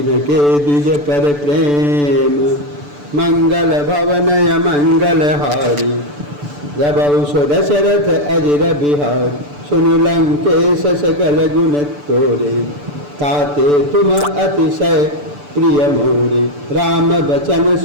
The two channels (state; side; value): late; left; 6.9 ms